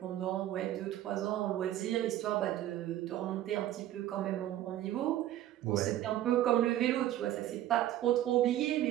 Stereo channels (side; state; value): left; quieter; 13.1 dB